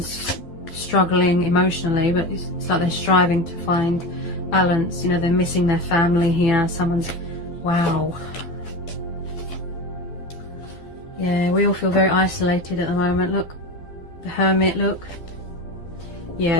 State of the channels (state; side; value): late; right; 12 ms